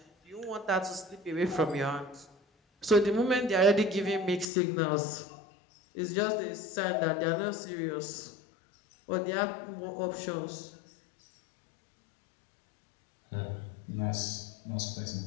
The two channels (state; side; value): drops out; right; at 4.5 s